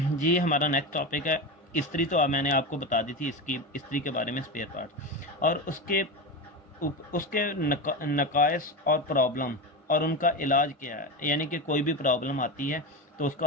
जी। हमारा नेक्स्ट टॉपिक है इस्त्री। तो मैंने आपको बता दी थी इसकी इस्त्री के बारे में, स्पेयर पार्ट और उसके नकाइस और प्रॉब्लम और उनका इलाज क्या है। यानी कि कोई भी प्रॉब्लम आती है तो उसको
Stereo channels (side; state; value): both; normal; correlation 0.20